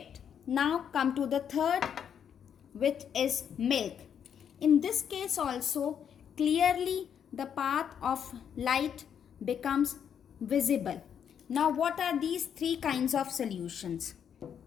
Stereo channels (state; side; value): quieter; right; 8.3 dB